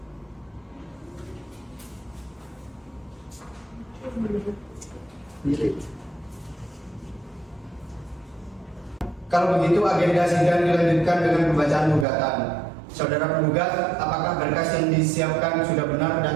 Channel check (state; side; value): drops out; left; at 12.1 s